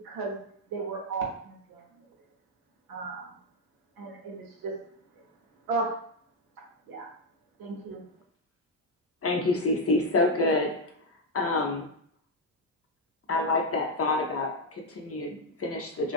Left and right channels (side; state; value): both; normal; correlation 0.03